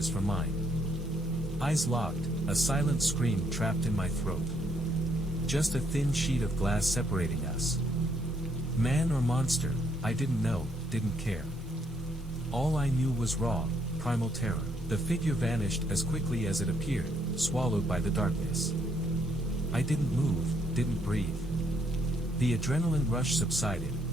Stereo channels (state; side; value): normal; both; correlation 0.71